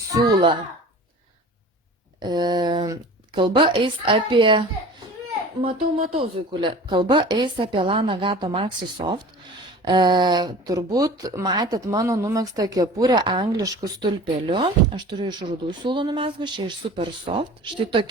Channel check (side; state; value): both; normal; correlation 0.40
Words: Kalba eis apie, matau, Zuikulė, kalba eis apie Lana Gato Maxi Soft. Turbūt matėt mano numegztą kepurę angliškų stulpeliu. Aš turiu iš rudų siūlų numezgus, čia iš Super Soft. Štai